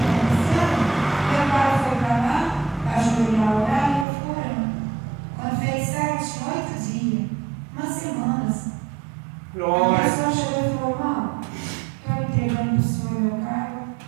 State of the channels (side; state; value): left; drops out; at 4.0 s